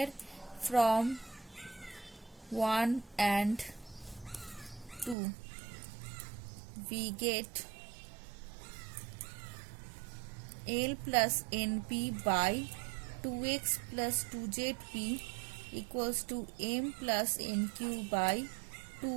from 1 and 2, we get L plus NP by 2x plus 2zp equals to M plus NQ by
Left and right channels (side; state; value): left; drops out; at 5.2 s